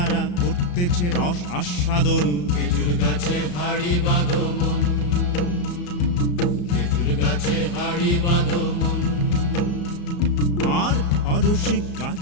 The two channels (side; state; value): right; late; 34 ms